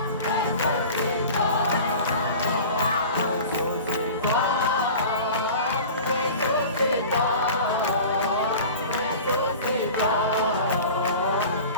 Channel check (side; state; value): both; inverted; correlation -0.38